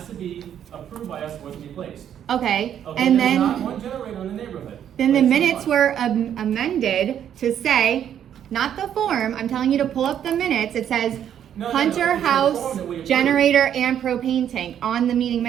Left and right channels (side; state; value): left; quieter; 9.6 dB